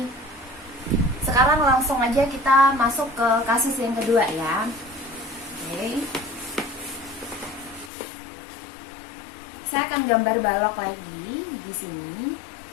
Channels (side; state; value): right; drops out; at 7.9 s